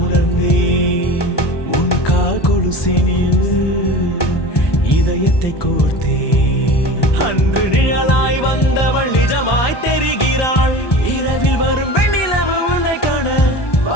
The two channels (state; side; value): late; right; 1.2 ms